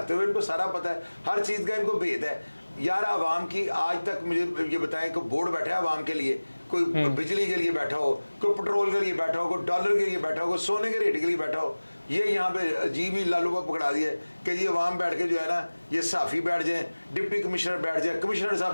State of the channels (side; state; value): both; inverted; correlation -1.00